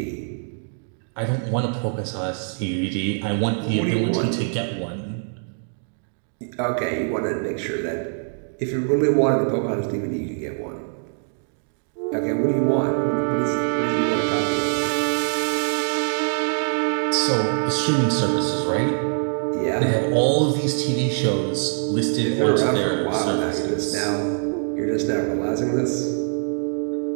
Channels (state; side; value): silent; left; digital silence